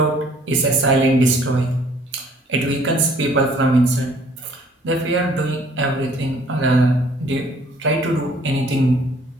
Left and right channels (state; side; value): normal; both; correlation 0.58